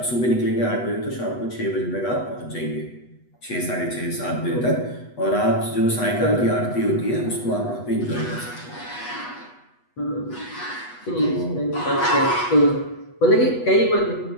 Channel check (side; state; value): right; late; 8.2 ms